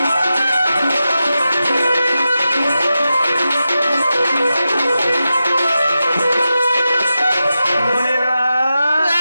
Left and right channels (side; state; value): both; inverted; correlation -0.91